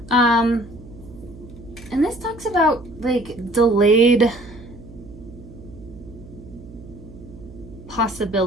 And this talks about delayed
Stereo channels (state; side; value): noise; right; hum, 17 dB below the sound